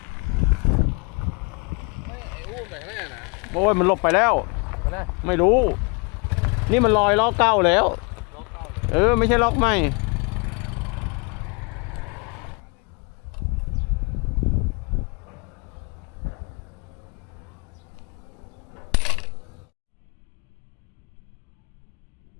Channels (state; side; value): quieter; right; 32.3 dB